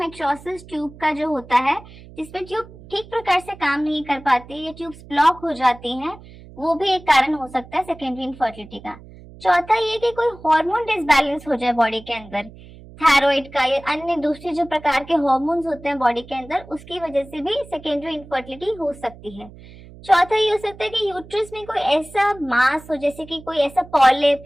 ट्यूब का जो होता है, जिसमें ट्यूब ठीक प्रकार से काम नहीं कर पाती या ट्यूब्स ब्लॉक हो जाती हैं, वो भी एक कारण हो सकता है सेकेंडरी इनफर्टिलिटी का। चौथा ये कि कोई हार्मोन डिसबैलेंस हो जाए बॉडी के अंदर, थायराइड का या अन्य दूसरे जो प्रकार के हार्मोन्स होते हैं बॉडी के अंदर, उसकी वजह से भी सेकेंडरी इनफर्टिलिटी हो सकती है। चौथा ये हो सकता है कि यूट्रस में कोई ऐसा मास हो, जैसे कि कोई ऐसा पॉलिप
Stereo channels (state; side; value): noise; right; hum, 19 dB below the sound